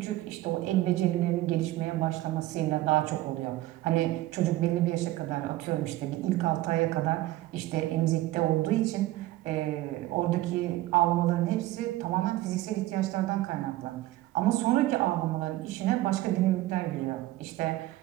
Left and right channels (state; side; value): quieter; left; 16.5 dB